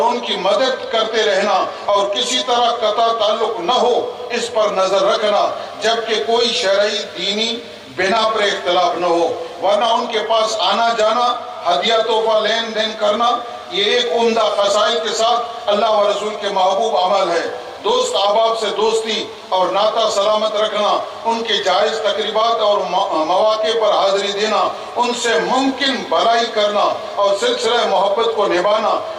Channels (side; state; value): both; identical; correlation 1.00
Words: ان کی مدد کرتے رہنا اور کسی طرح قطع تعلق نہ ہو اس پر نظر رکھنا، جبکہ کوئی شرعی دینی بنا پر اختلاف نہ ہو، ورنہ ان کے پاس آنا جانا، ہدیہ تحفہ لین دین کرنا یہ ایک عمدہ خصائل کے ساتھ اللہ و رسول کے محبوب عمل ہے۔ دوست احباب سے دوستی اور ناطہ سلامت رکھنا، ان کے جائز تقریبات اور مواقع پر حاضری دینا، ان سے ممکن بھلائی کرنا اور سلسلہ محبت کو نبھانا